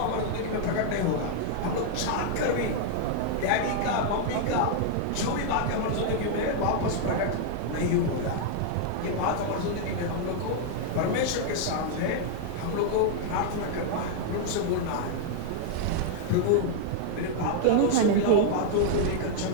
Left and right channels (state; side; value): different; both; correlation -0.01